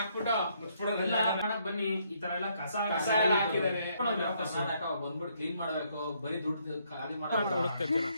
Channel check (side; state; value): both; inverted; correlation -0.71